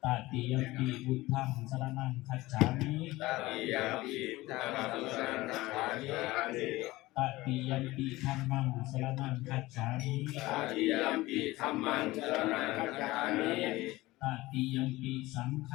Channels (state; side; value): quieter; right; 19.1 dB